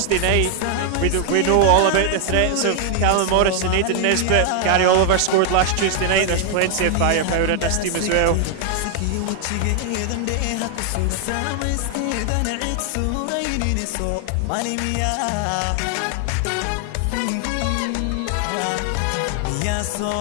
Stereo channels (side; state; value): both; different; correlation 0.00